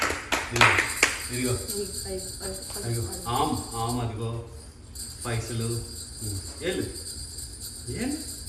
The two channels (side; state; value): both; identical; correlation 1.00